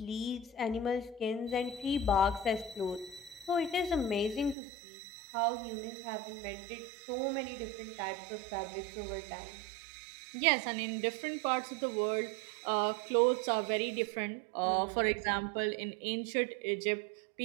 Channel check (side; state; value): left; drops out; at 4.5 s